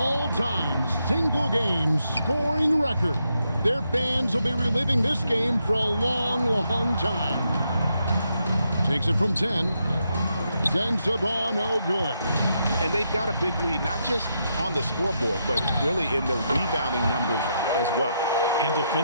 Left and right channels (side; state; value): both; inverted; correlation -0.81